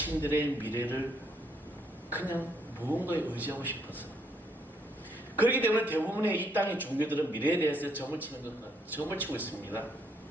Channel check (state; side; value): normal; both; correlation 0.71